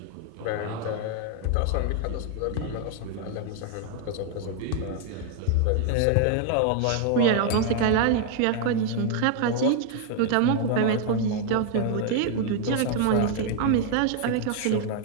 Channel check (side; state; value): both; different; correlation 0.00